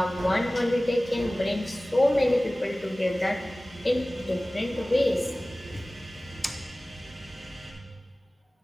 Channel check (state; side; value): normal; both; correlation 0.98